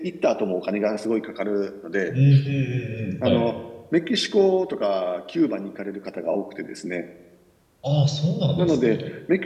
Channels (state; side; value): identical; both; correlation 1.00